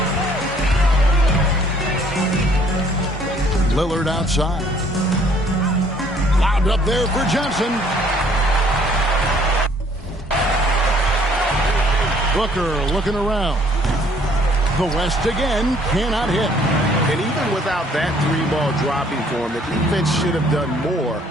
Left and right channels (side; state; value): both; normal; correlation 0.60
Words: Lillard outside. Lobbed up there for Johnson. Booker looking around. The West again cannot hit. And even without that three-ball dropping for him, the defense should have done more